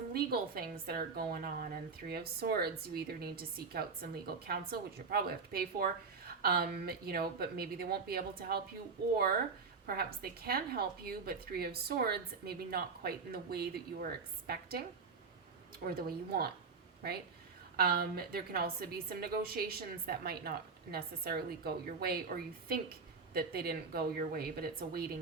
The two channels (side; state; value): left; quieter; 4.9 dB